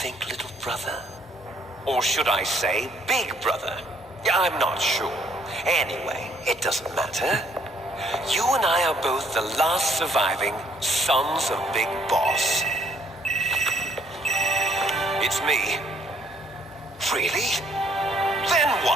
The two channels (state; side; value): normal; both; correlation 0.65